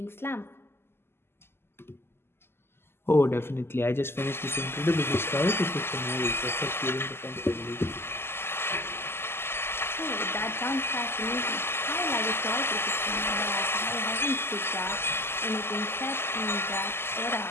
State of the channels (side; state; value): right; late; 0.12 ms